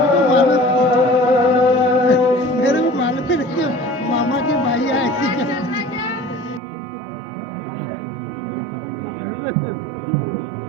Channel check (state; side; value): drops out; left; at 6.6 s